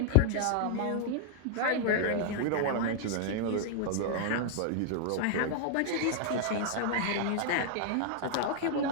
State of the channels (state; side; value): different; both; correlation -0.01